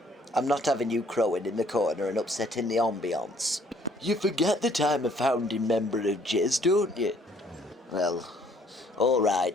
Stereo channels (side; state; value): both; normal; correlation 0.62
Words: I'm not having you crowing in the corner and upsetting the ambience. You forget that I'm a founding member of Jizz, don't you? Well, all